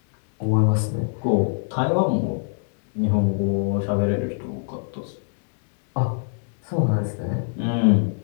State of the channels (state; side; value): silent; right; digital silence